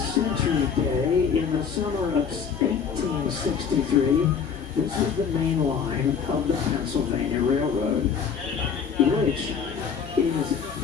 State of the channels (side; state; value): right; quieter; 6.7 dB